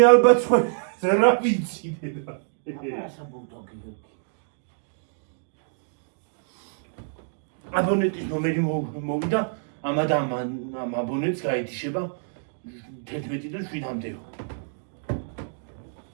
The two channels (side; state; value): left; silent; digital silence